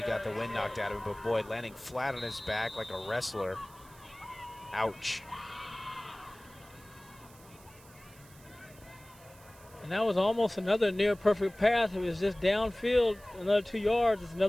got the wind knocked out of him, but boy, landing flat on his back like a wrestler. Ouch. And that was almost another near perfect pass. It was just downfield, another 2 yards, it's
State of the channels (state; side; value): noise; right; hiss, 24 dB below the sound